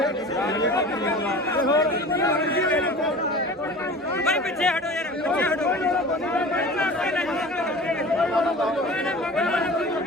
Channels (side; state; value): both; normal; correlation 0.38